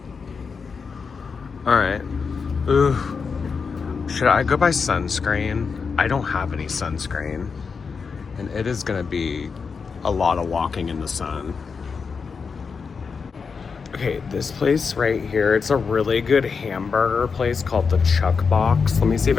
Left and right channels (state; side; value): quieter; right; 5.4 dB